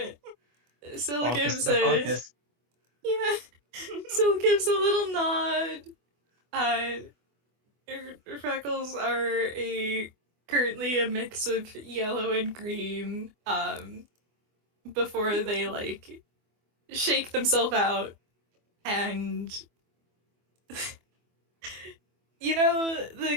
Sil Focus gives to the a focus. Sil gives a little nod. Freckles are currently a mix of yellow and green. Before they like shake themselves out, and you know the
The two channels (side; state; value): left; late; 24 ms